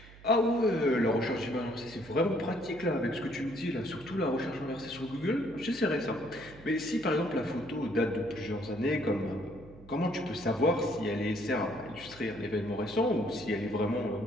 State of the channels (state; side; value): noise; right; hum, 20 dB below the sound